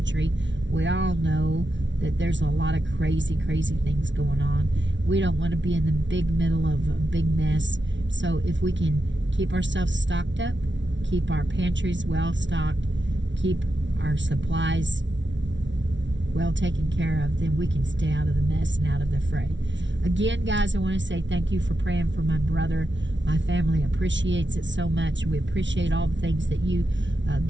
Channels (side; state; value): left; late; 0.54 ms